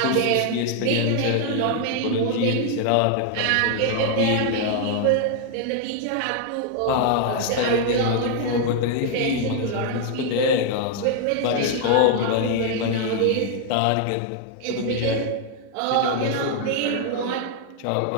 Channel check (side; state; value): both; different; correlation 0.00